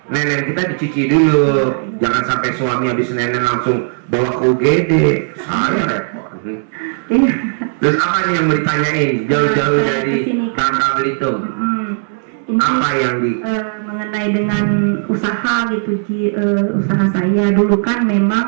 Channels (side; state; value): left; silent; 69 dB below the other